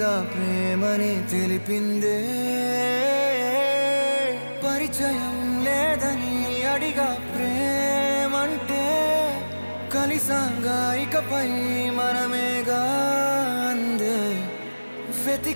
ప్రేమని తెలిపిందే. పరిచయం లేదని అడిగా ప్రేమంటే, కలిసాంగా ఇకపై మనమేగా అందే.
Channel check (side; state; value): both; inverted; correlation -1.00